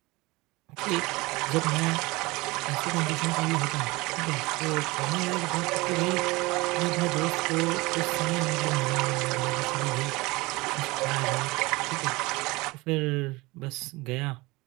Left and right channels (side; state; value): left; quieter; 22.6 dB